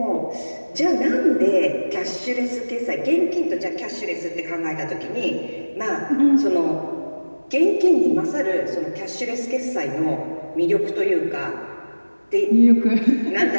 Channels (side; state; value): both; inverted; correlation -1.00